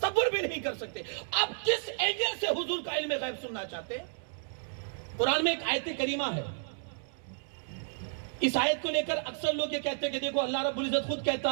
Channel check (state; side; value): silent; left; 57 dB below the other